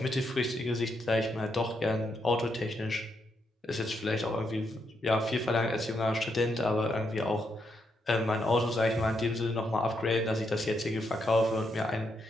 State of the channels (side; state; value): both; normal; correlation 0.79